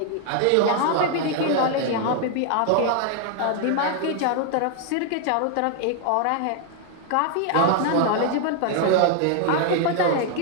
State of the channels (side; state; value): both; different; correlation 0.00